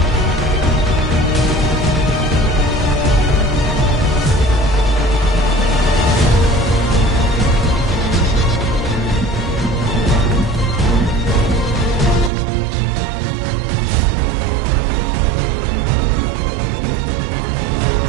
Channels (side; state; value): left; drops out; at 12.3 s